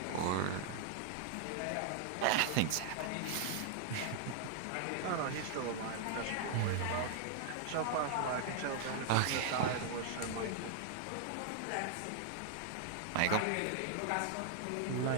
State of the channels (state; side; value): different; both; correlation 0.00